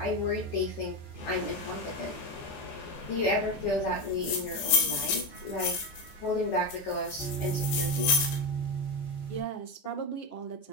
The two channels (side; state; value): right; late; 14 ms